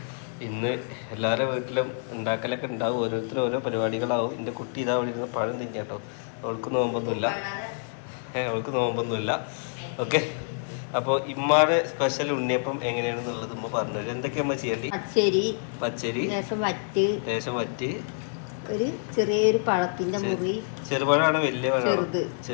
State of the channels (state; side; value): silent; right; 60 dB below the other